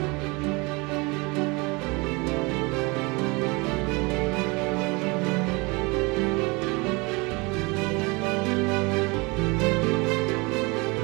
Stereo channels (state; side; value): quieter; left; 26.8 dB